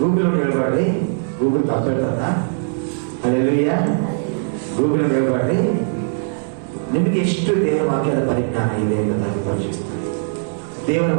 ಹೇಳ್ಬಾರ್ರಿ, ಗೂಗಲ್ ತಪ್ಪಿರ್ತಾರ. ಹಲ್ಲೆಲೂಯಾ. ಗೂಗಲ್ ಹೇಳ್ಬಾರ್ರಿ. ನಿಮಗೆ ಎಷ್ಟು ದೇವರ ವಾಕ್ಯದ ಪರಿಜ್ಞಾನ ಇದೆ ಎಂಬುದಾಗಿ ಪರೀಕ್ಷಿಸ್ತಾರೆ. ದೇವರ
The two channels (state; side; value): silent; left; digital silence